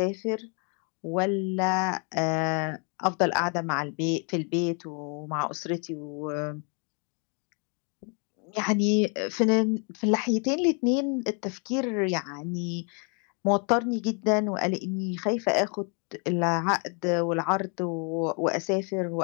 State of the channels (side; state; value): right; quieter; 37.4 dB